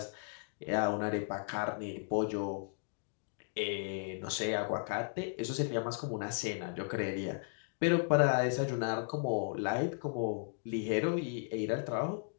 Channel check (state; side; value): silent; right; digital silence